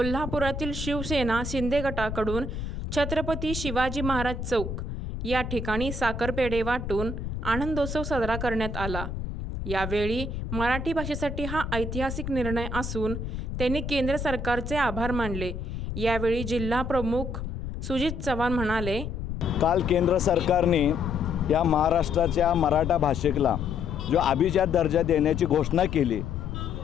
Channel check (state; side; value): noise; left; rumble, 6 dB below the sound